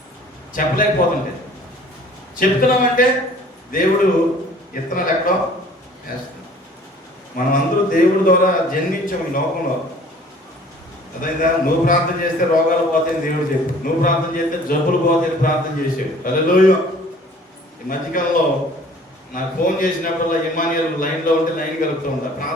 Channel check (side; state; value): both; normal; correlation 0.51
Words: చెప్పలేకపోతుంటే చెప్తున్నామంటే దేవుడు ఇత్తనాలు ఎక్కడో వేస్తున్నాం. మనం అందరూ దేవుడి ద్వారా జన్మించాము ఈ లోకంలో. అదైందా? నువ్వు ప్రార్థన చేస్తే రోగాలు పోతాయని దేవుడు చెప్పు, నువ్వు ప్రార్థన చేస్తే జబ్బులు పోతాయని ప్రార్థన చేసావు. హల్లెలూయా. ఈ మధ్యకాలంలో నాకు ఫోన్ చేసినప్పుడల్లా ఇమానియల్ లైన్లో ఉంటే లైన్ కలుపుతూ ఉంటా,